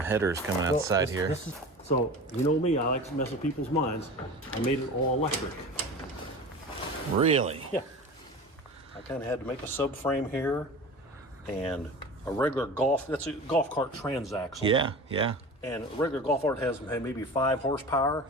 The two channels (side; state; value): both; normal; correlation 0.34